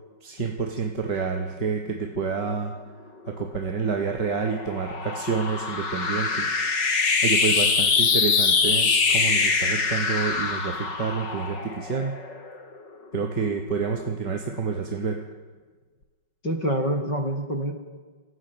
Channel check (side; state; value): right; late; 5.4 ms